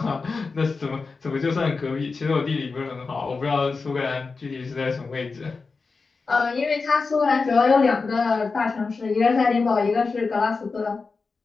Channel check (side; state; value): right; quieter; 4.4 dB